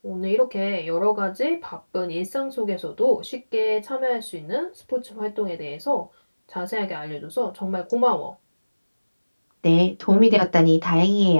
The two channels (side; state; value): both; inverted; correlation -1.00